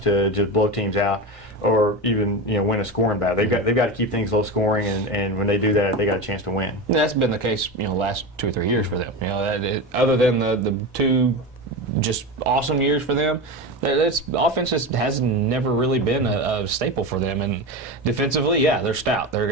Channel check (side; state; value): both; normal; correlation 0.22